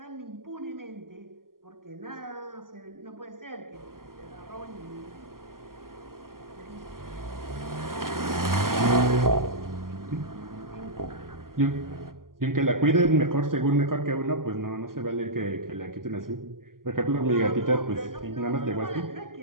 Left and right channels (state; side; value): late; left; 0.91 ms